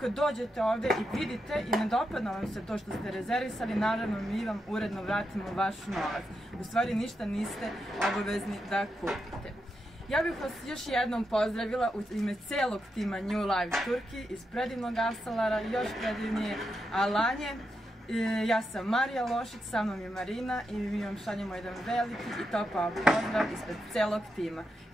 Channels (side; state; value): both; normal; correlation 0.85